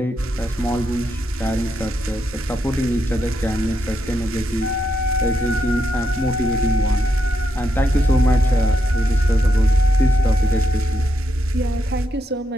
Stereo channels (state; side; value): normal; both; correlation 0.81